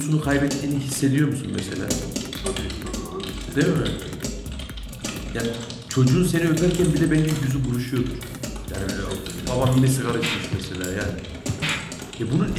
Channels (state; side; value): identical; both; correlation 1.00